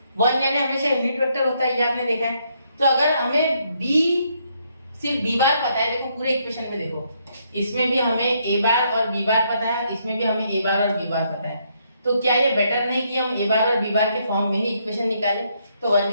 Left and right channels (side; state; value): both; inverted; correlation -0.73